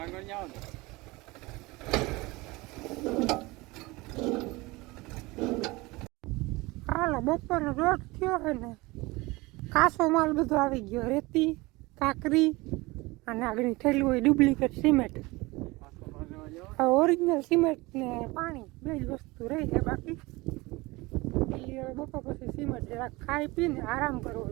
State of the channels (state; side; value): quieter; left; 22.5 dB